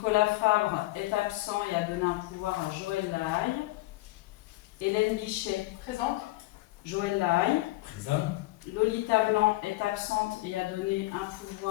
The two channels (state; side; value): quieter; right; 19.2 dB